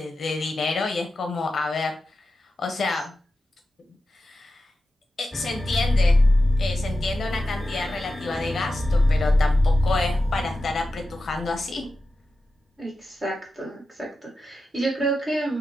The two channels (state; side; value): normal; both; correlation 0.92